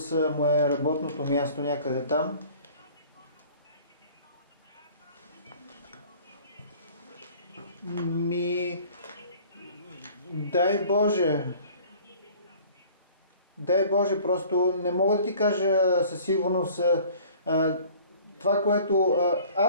му е работното място някъде там. Дай Боже, просто не мога да ти кажа със сигурност това, което...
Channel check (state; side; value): inverted; both; correlation -0.50